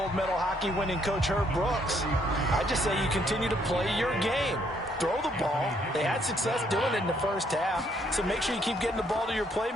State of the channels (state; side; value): normal; both; correlation 0.69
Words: medal hockey winning coach Herb Brooks, I just say you continue to play your game. Throw the ball. They had success doing it in the first half, so make sure you keep getting the ball to your